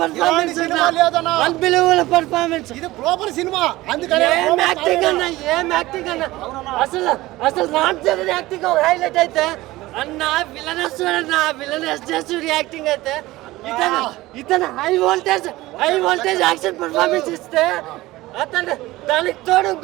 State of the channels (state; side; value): quieter; left; 18.3 dB